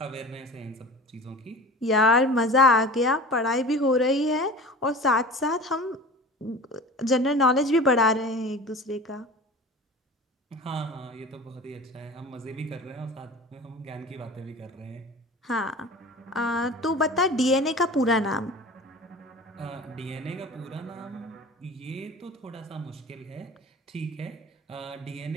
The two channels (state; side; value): normal; both; correlation 0.38